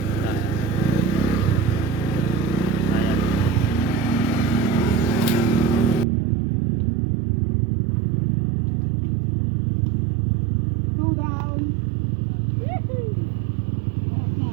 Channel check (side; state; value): left; drops out; at 6.1 s